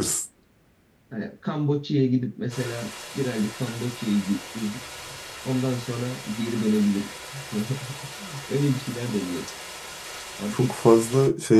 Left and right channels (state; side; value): identical; both; correlation 1.00